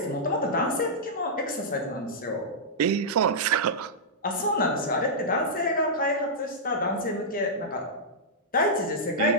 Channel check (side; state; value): both; normal; correlation -0.12